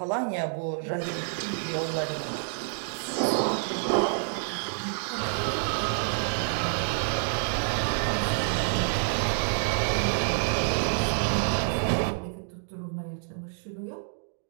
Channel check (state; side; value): silent; left; digital silence